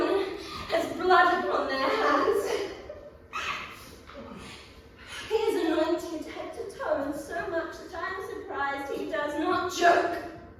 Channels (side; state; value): both; identical; correlation 1.00